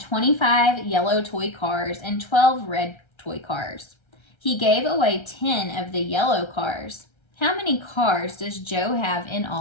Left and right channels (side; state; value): right; late; 1.3 ms